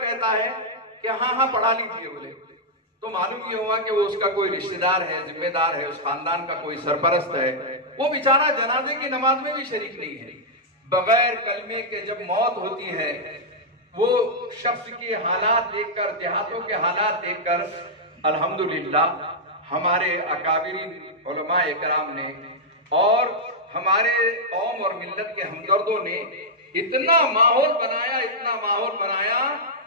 है कि हाँ हाँ पढ़ा लीजिए बोले, तो मालूम ये हुआ कि वो उसका कोई रिश्तेदार है, जिम्मेदार है, उस खानदान का कोई सरपरस्त है। वो बेचारा जनाजे की नमाज में भी शरीक नहीं है। बगैर कलमे के जब मौत होती है, वो शख्स के हालात देखकर, देहातों के हालात देखकर अल्हम्दुलिल्लाह हमारे अकाबिरीन उलमा इकराम ने और हमारे कौम और मिल्लत के हमदर्दों ने इतना माहौल बनाया, इतना माहौल बनाया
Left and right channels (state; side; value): normal; both; correlation -0.06